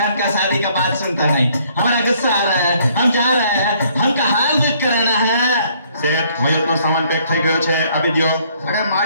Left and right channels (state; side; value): inverted; both; correlation -0.63